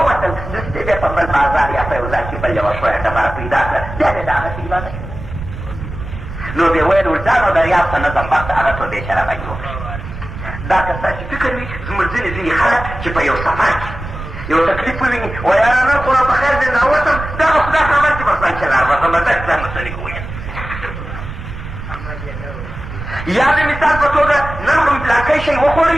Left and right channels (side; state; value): right; noise; rumble, 9 dB below the sound